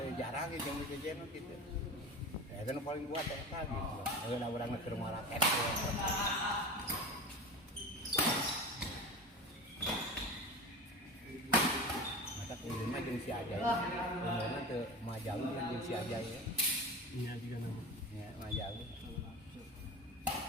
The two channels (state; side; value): normal; both; correlation 0.30